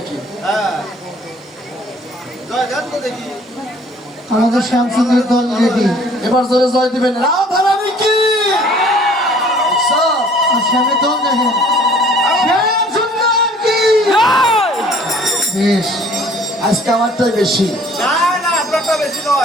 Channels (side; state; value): both; normal; correlation 0.55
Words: আমাদের শ্যামসুন্দর দল রেডি। এবার জোরে জয় দিবেন। রাধারানী কি? শ্যামের দল দেখেন। শ্যামসুন্দর কি? বেশ, আজকে আমারটাই বেশি।